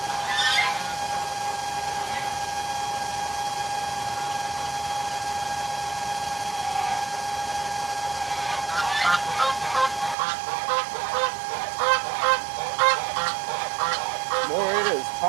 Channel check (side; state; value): left; drops out; at 10.2 s